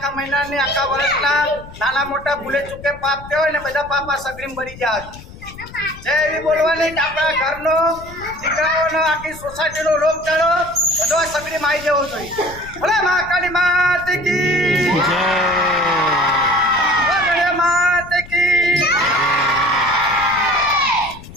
મહિના ને આખા વર્ષના નાના મોટા ભૂલે ચૂકે પાપ થયો હોય ને બધા પાપ આ સગડીમાં ભરી જાય જે એવી બોલવાની કે આપણા ઘરનો દીકરાઓનો આખી સોસાયટીનો લોક ચાલો બધો સગડીમાં આવી જવો જોઈએ ભલે મહાકાળી માતે કી જય માતે કી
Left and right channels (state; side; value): noise; left; rumble, 17 dB below the sound